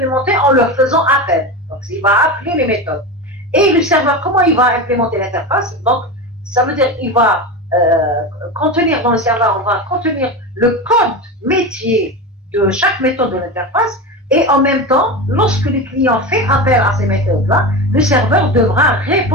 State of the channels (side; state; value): both; normal; correlation 0.22